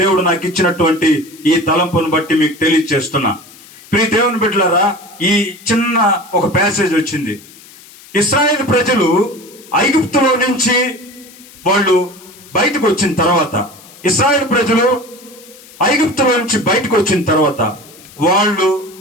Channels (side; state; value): left; noise; hiss, 22 dB below the sound